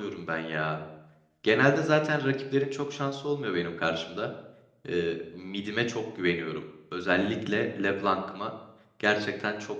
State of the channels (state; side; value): identical; both; correlation 1.00